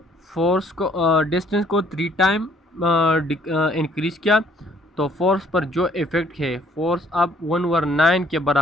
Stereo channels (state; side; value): normal; both; correlation 0.62